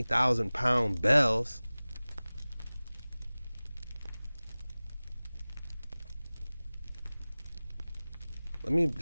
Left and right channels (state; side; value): inverted; both; correlation -0.99